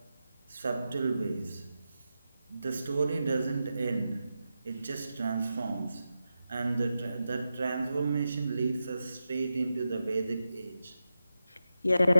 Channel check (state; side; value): inverted; both; correlation -0.90